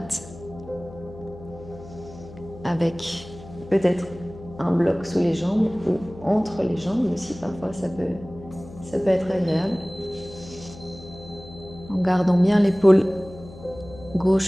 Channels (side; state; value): left; noise; hum, 17 dB below the sound